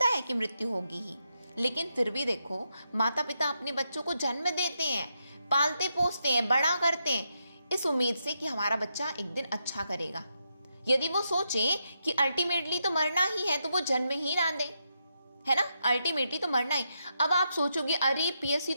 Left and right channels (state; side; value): inverted; both; correlation -0.83